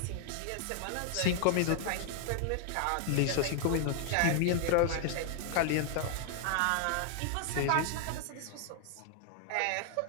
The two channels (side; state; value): both; different; correlation 0.00